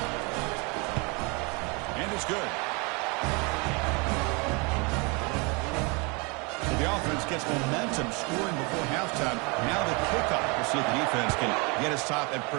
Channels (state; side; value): quieter; left; 30.0 dB